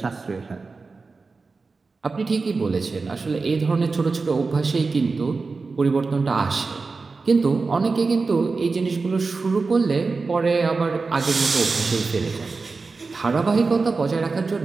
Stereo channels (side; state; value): left; quieter; 4.2 dB